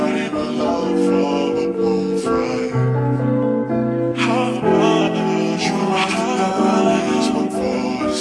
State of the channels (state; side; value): identical; both; correlation 1.00